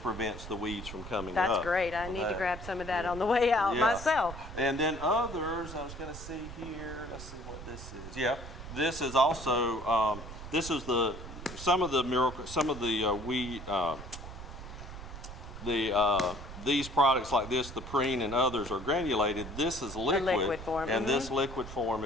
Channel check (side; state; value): right; noise; rumble, 11 dB below the sound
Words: the weeds from coming up. That's great. I need to grab some of that on the way out myself. And then others, I was going to see here, let's see what this is. Yeah, this is also, some of the weed, these products like this, the preen and others, are granulated. This is liquid, liquid form. And this liquid form